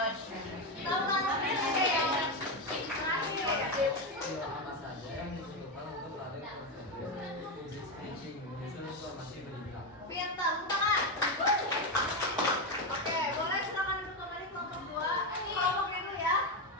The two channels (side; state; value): both; normal; correlation 0.10